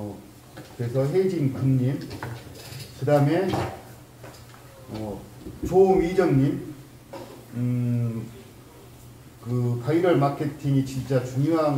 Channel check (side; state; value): both; identical; correlation 1.00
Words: 그래서 혜진 금님, 그 다음에 조미정님, 디지털 마케팅이 진짜